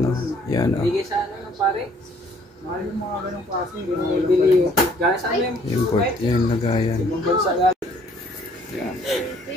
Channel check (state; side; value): normal; both; correlation 0.60